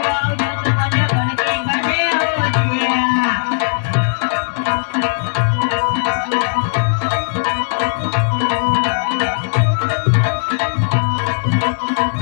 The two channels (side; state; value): right; silent; digital silence